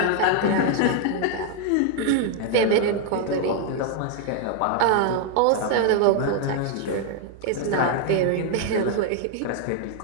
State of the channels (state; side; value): different; both; correlation 0.00